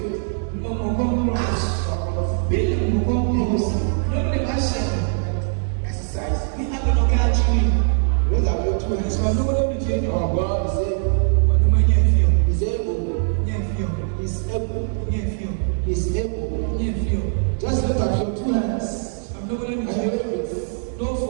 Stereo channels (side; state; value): left; silent; digital silence